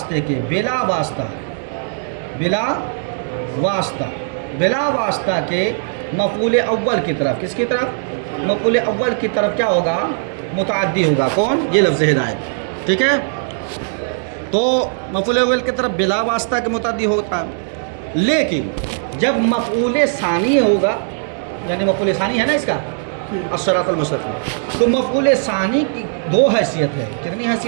کے، بلا واسطہ، بلا واسطہ، بلا واسطہ کے مفعول اول کی طرف. کس کی طرف؟ مفعول اول کی طرف کیا ہوگا؟ متعدی ہوگا. کون؟ یہ لفظ ہدایت. ٹھیک ہے؟ تو مفعول اول کی طرف بلا واسطہ کے متعدی ہوتا ہے. لیکن جب مفعول ثانی ہوگا، یعنی مفعول ثانی ہے نا اس کا الصراط المستقیم، تو مفعول ثانی کی دو حیثیت ہے. کتنی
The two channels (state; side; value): silent; left; digital silence